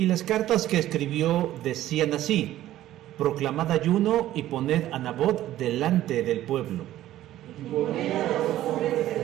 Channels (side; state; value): left; quieter; 13.8 dB